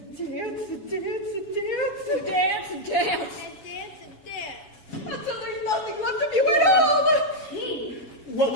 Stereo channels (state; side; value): late; right; 7.2 ms